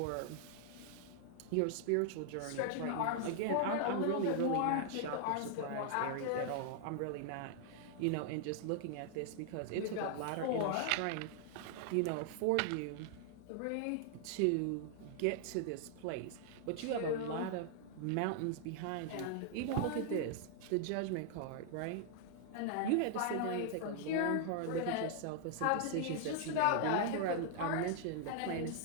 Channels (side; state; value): both; different; correlation 0.00